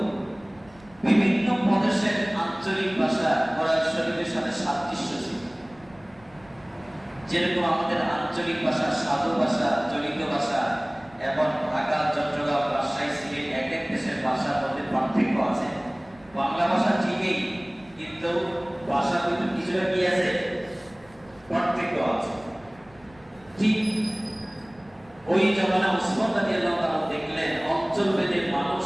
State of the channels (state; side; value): noise; right; rumble, 27 dB below the sound